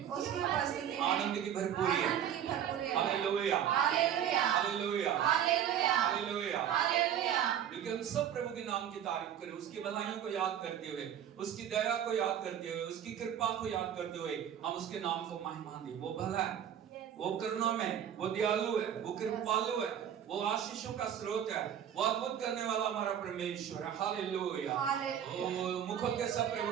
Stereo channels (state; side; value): quieter; left; 9.6 dB